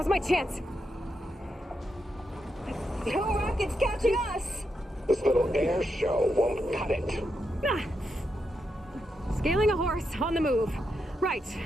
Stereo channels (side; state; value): both; normal; correlation 0.84